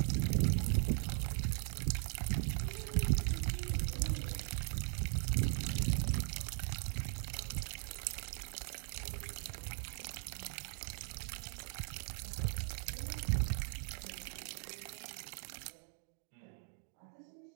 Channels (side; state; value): left; silent; 52 dB below the other